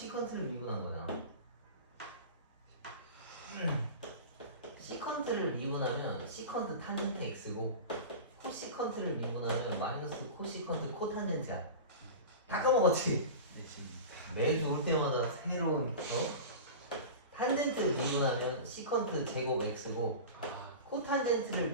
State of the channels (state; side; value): inverted; both; correlation -0.31